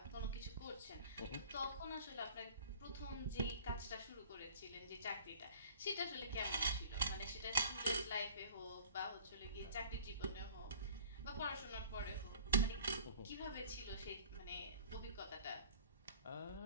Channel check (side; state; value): both; inverted; correlation -0.48